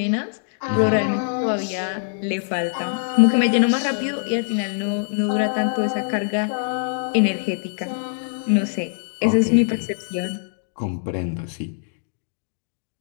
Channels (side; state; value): right; silent; digital silence